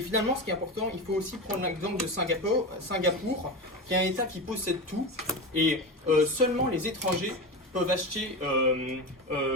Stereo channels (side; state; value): both; normal; correlation 0.22